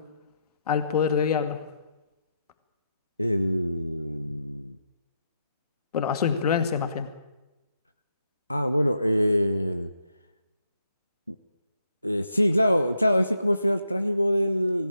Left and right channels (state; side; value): inverted; both; correlation -0.80